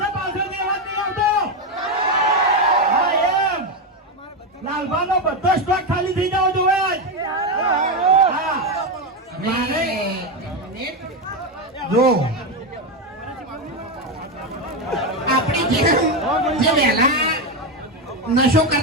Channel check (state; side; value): normal; both; correlation 0.09